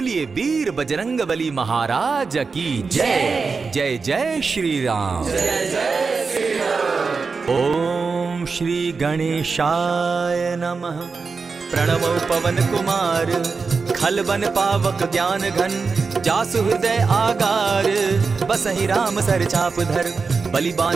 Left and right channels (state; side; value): quieter; left; 4.7 dB